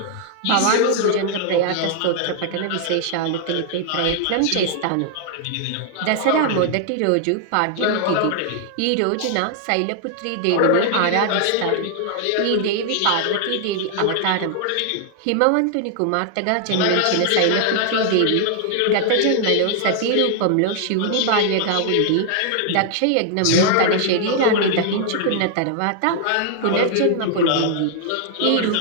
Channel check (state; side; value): different; both; correlation 0.00